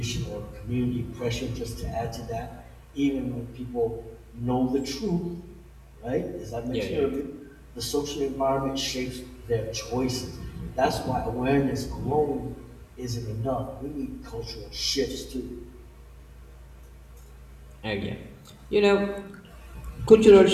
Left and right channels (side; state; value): both; identical; correlation 1.00